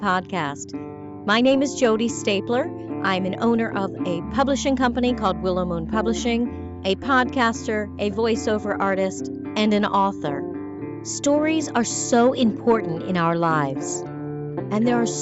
My name is Jody Stapler. I'm an owner of a publishing company called Willow Moon Publishing, a podcaster, a voiceover artist, and an author. Stories are so important in our lives, and there are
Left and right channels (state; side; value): identical; both; correlation 1.00